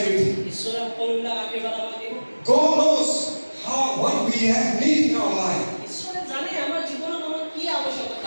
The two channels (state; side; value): inverted; both; correlation -1.00